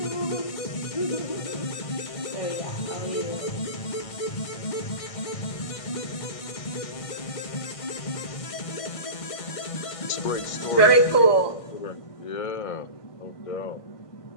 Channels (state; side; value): late; right; 1.6 ms